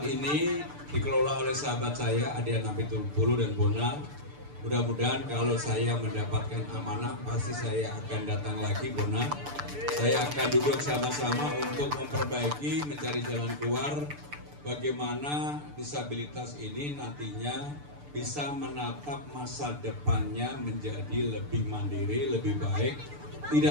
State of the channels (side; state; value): left; late; 6.8 ms